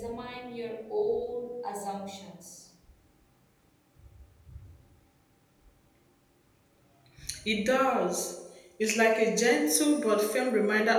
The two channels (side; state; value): both; identical; correlation 1.00